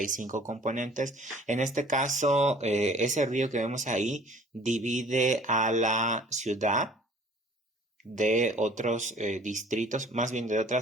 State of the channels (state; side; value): normal; both; correlation 0.51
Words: 5 componentes. En este caso, ese río que vemos ahí divide a la ciudad de otros distritos, más bien de